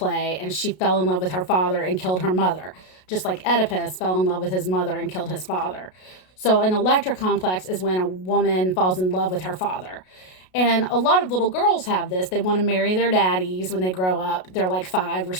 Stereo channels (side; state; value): right; late; 33 ms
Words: and she fell in love with her father and killed her mother, just like Oedipus fell in love with his mother and killed his father. So an Electra complex is when a woman falls in love with her father. And a lot of little girls have this. They want to marry their daddies when they grow up. They're like 5 or